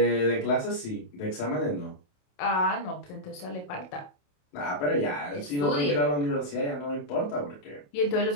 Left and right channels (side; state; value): right; late; 28 ms